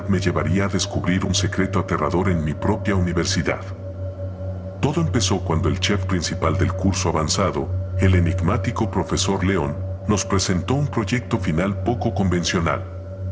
me llevaría a descubrir un secreto aterrador en mi propia universidad. Todo empezó cuando el chef principal del curso avanzado, el enigmático profesor León, nos presentó un proyecto final poco convencional.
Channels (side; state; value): both; identical; correlation 1.00